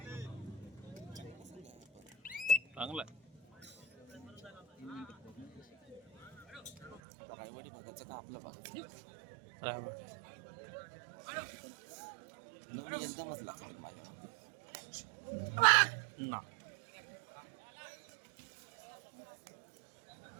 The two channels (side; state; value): left; drops out; at 7.0 s